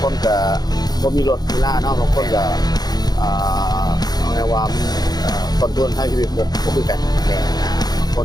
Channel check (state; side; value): late; right; 0.19 ms